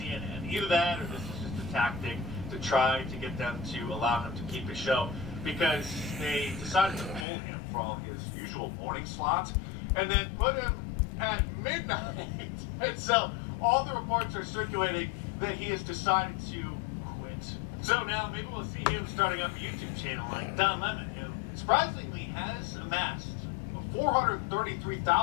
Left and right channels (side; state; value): right; drops out; at 7.2 s